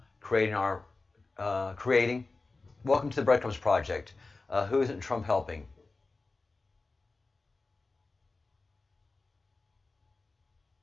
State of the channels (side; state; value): right; quieter; 3.6 dB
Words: Creating. Welcome to the Breadcrumbs Project. Who isn't Trump helping?